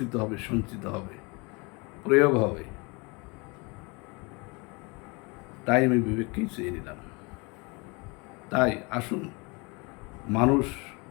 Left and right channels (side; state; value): right; quieter; 28.6 dB